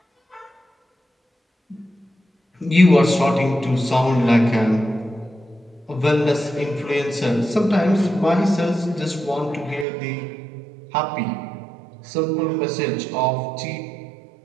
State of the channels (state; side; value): drops out; left; at 9.9 s